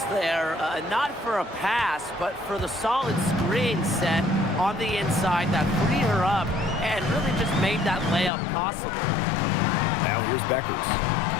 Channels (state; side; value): drops out; right; at 8.3 s